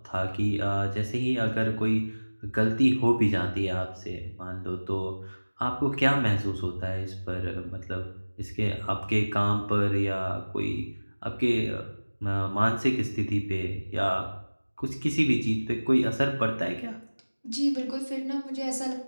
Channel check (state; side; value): inverted; both; correlation -1.00